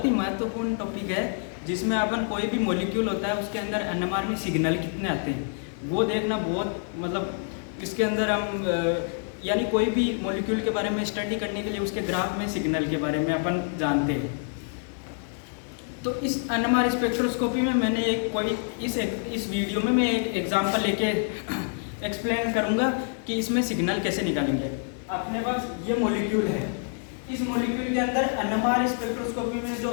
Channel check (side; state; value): right; silent; 60 dB below the other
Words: ही महत्वपूर्ण टॉपिक है जिसमें अपन कोई भी मॉलिक्यूल होता है उसके अंदर एनएमआर में सिग्नल कितने आते हैं वो देखना बहुत इसके अंदर हम यानी कोई भी मॉलिक्यूल के बारे में स्टडी करने के लिए उसके ग्राफ में सिग्नल के बारे में अपन जानते हैं। तो इस एनएमआर स्पेक्ट्रोस्कोपी में मैंने इस वीडियो में मैं एक एग्जांपल लेके एक्सप्लेन करूंगा कि इसमें सिग्नल कैसे निकालेंगे। अपने पास ये मॉलिक्यूल है, इस मॉलिक्यूल के अंदर एनएमआर स्पेक्ट्रोस्कोपी में जो